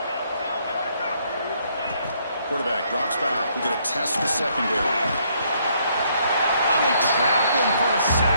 Quarterback drops back. We get a test the secondary. They trap him for a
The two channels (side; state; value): both; inverted; correlation -0.70